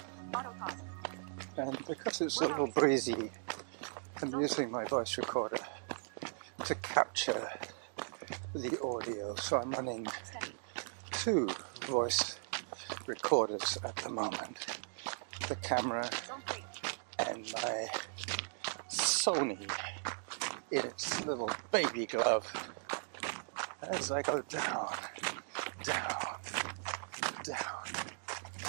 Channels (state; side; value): silent; left; digital silence